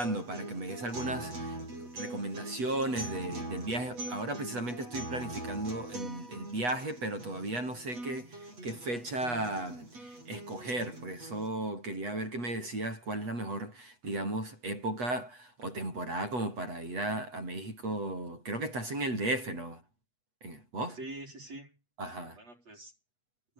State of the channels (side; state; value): left; late; 8.2 ms